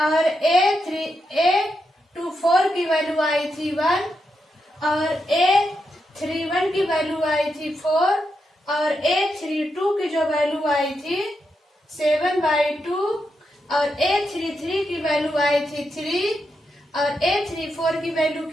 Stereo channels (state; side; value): normal; both; correlation 0.84